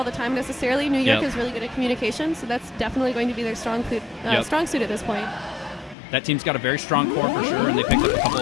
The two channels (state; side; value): drops out; right; at 6.0 s